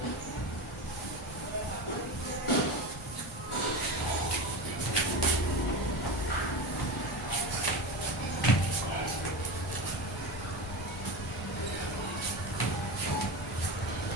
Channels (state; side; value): normal; both; correlation 0.24